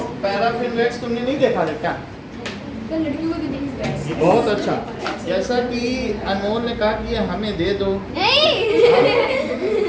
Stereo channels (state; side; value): identical; both; correlation 1.00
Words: पैराफिन वैक्स तुमने नहीं देखा था क्या? बहुत अच्छा, जैसा कि अनमोल ने कहा कि ये हमें दे दो।